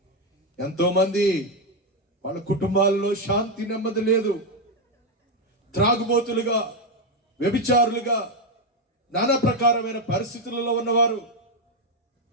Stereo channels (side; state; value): both; normal; correlation 0.04